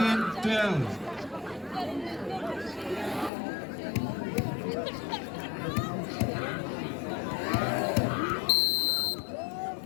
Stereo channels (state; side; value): drops out; right; at 3.3 s